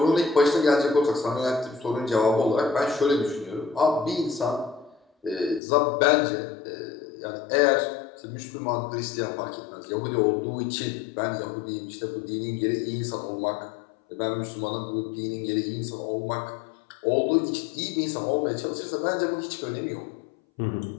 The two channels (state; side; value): drops out; right; at 5.6 s